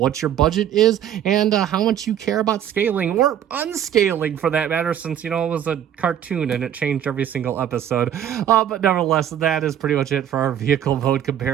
your budget is, and how much you care about scaling, or unscaling for that matter, since, it was a cartoon and it changed every single episode. But nevertheless, that is pretty much it for our vehicle mode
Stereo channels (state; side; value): quieter; left; 10.2 dB